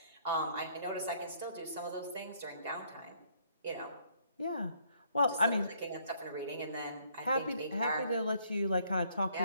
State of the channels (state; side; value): inverted; both; correlation -0.65